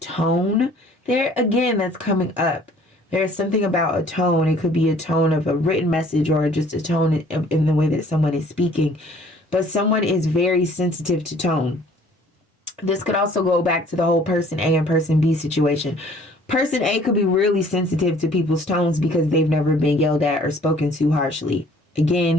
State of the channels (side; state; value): both; normal; correlation 0.55